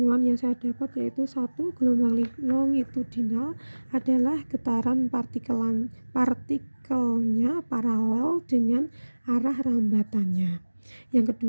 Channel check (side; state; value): both; inverted; correlation -1.00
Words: yang saya dapat yaitu 1. Gelombang longitudinal adalah getaran partikelnya paralel dengan arah rambatannya. Yang